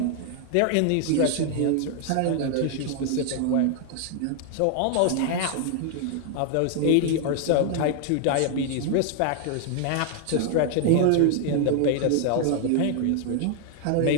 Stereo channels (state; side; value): different; both; correlation 0.00